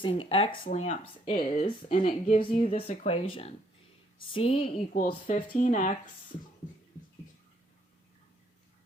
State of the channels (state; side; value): normal; both; correlation 0.68